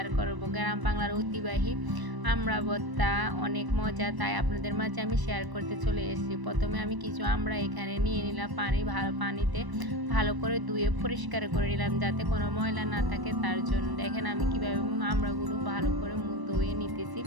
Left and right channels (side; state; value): left; late; 1.0 ms